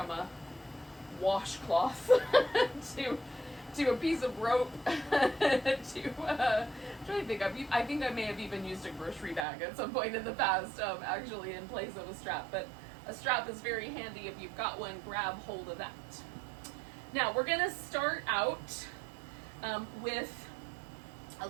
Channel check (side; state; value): left; drops out; at 9.5 s